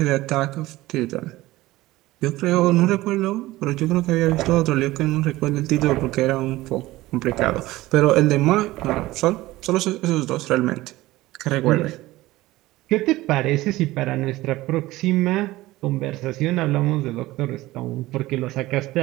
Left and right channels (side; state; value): left; quieter; 17.9 dB